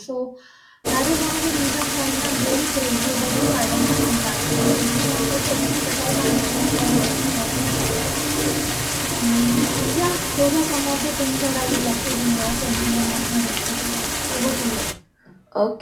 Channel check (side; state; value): both; identical; correlation 1.00